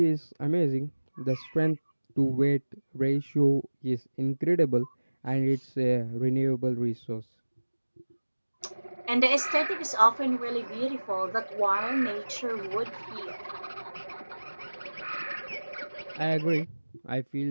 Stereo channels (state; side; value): inverted; both; correlation -1.00